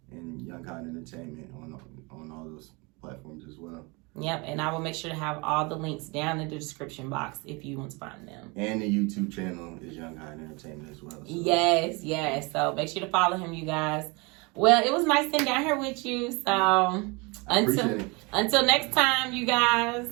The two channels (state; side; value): quieter; left; 27.8 dB